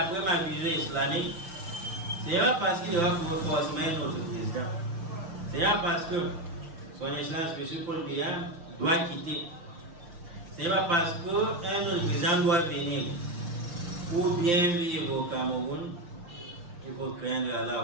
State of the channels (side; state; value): left; late; 5.8 ms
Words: ma vision islamique, c'est pas parce qu'il va forcément notre président. C'est pas parce que son excellence M. Paul Biya doit quitter. C'est pas parce qu'un autre président doit venir. Pour bien vivre au Cameroun, il faut craindre Allah,